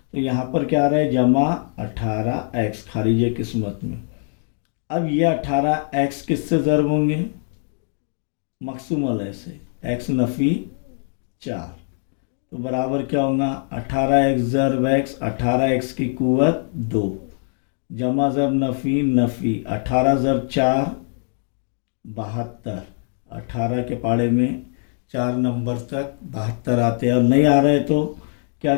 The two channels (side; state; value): right; silent; 64 dB below the other